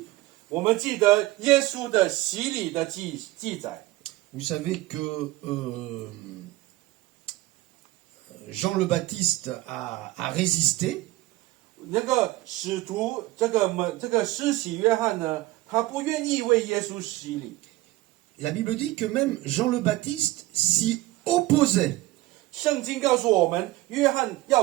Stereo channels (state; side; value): quieter; left; 18.2 dB